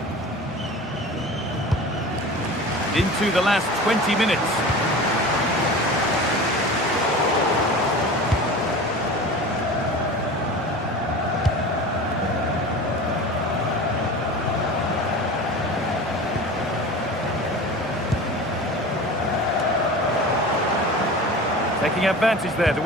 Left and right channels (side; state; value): both; normal; correlation 0.35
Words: Into the last 20 minutes. Taking advantage there to